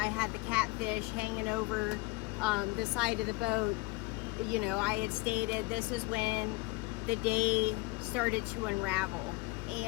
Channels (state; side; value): quieter; right; 23.4 dB